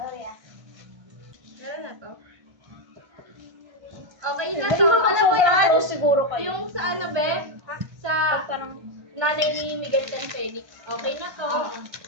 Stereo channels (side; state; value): left; late; 1.2 ms